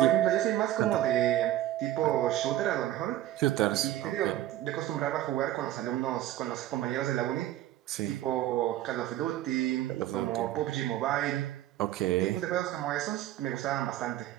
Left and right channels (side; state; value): left; quieter; 13.6 dB